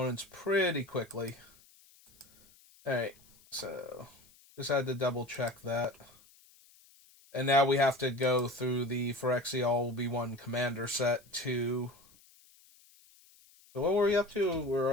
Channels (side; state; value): left; noise; hiss, 27 dB below the sound